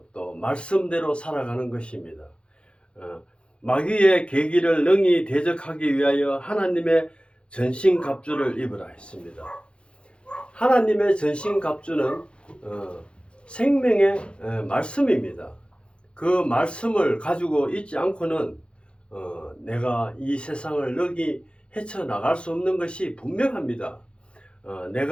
또 말씀대로 살아가는 것입니다. 마귀의 계기를 능히 대적하기 위하여 하나님의 전신갑주를 입으라 했습니다. 하나님의 전신갑주는 생명의 말씀입니다. 그 말씀을 가지고 있지 않고는 내가 이 세상을 능히 헤쳐나갈 수 없는 것이 분명합니다.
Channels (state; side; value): late; right; 0.057 ms